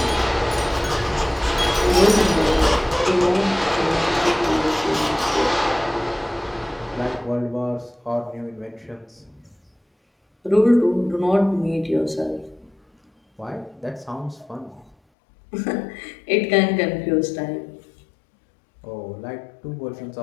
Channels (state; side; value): drops out; right; at 15.0 s